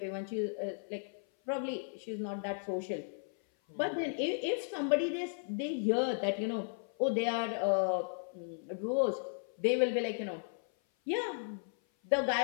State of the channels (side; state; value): right; silent; 54 dB below the other